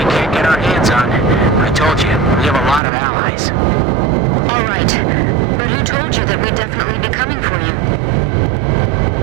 can't get our hands on. I told you, we have a lot of allies. All right. But who told you that we'd definitely be coming for you?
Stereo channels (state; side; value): drops out; left; at 2.8 s